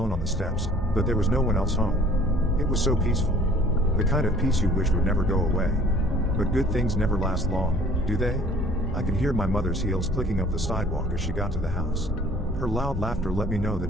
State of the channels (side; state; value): both; normal; correlation 0.53